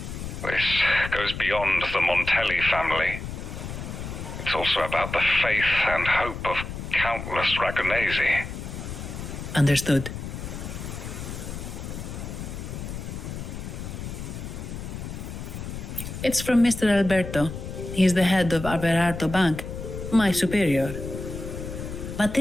This goes beyond the Montelli family. It's also about the faith and hope of countless Ragonesi. Understood. It's from Mr. Alberto. He's the head of Averardo Bank, my superior. But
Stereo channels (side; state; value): left; noise; rumble, 8 dB below the sound